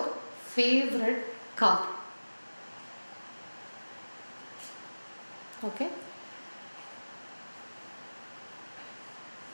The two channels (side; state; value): both; inverted; correlation -1.00